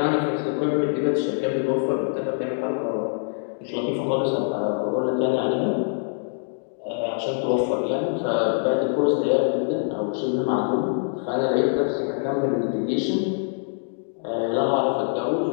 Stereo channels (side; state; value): right; silent; digital silence